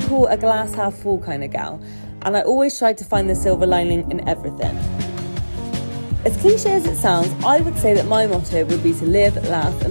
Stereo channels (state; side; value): inverted; both; correlation -1.00